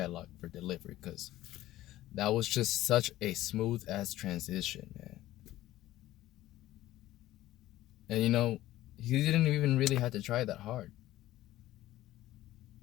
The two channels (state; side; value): quieter; right; 15.2 dB